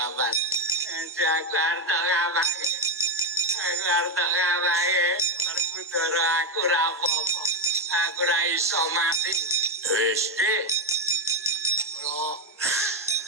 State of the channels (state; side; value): normal; both; correlation 0.06